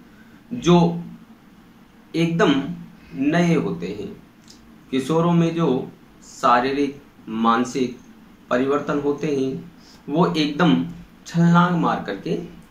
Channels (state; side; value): identical; both; correlation 1.00